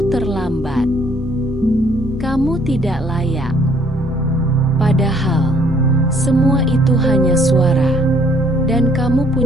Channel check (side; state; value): both; normal; correlation 0.63